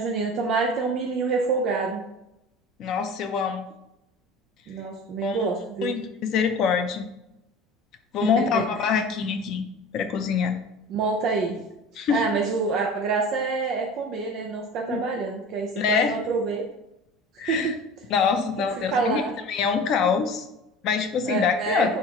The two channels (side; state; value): both; normal; correlation 0.37